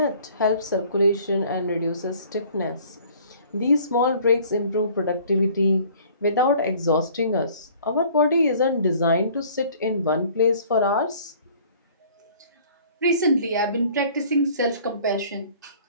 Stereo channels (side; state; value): both; inverted; correlation -0.53